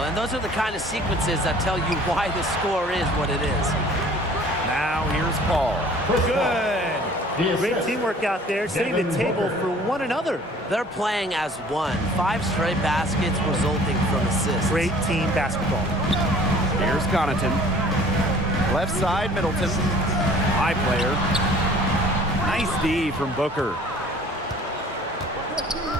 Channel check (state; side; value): normal; both; correlation 0.50